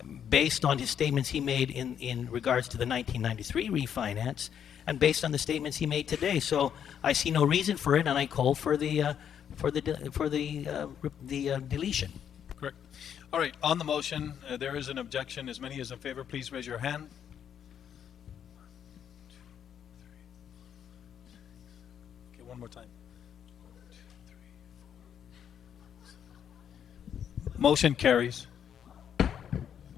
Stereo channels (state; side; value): quieter; right; 8.7 dB